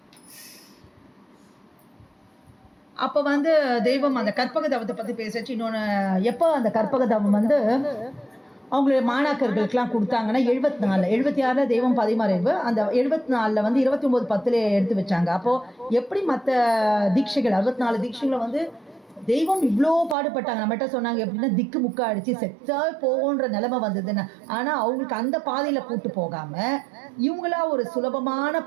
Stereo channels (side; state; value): left; drops out; at 20.2 s